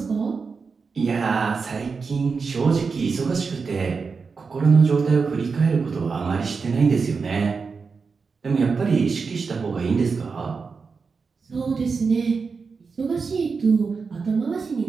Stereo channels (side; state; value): left; quieter; 5.0 dB